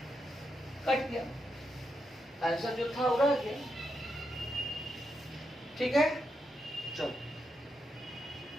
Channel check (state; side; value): normal; both; correlation 0.83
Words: कट गया, आंसर जो था वो रह गया। ठीक है, चलो